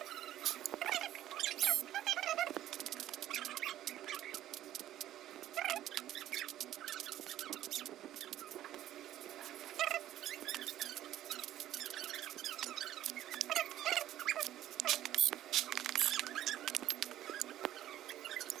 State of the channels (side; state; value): left; quieter; 12.9 dB